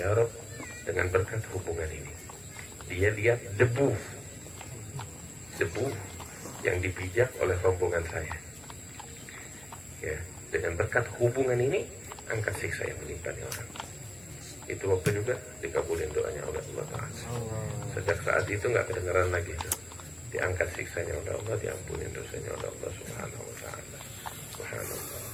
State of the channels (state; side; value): noise; left; hum, 22 dB below the sound